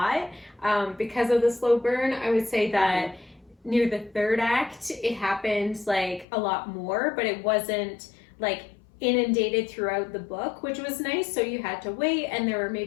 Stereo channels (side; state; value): right; drops out; at 6.2 s